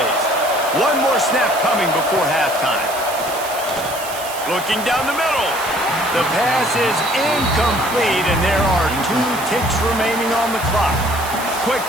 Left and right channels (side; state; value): right; noise; hiss, 11 dB below the sound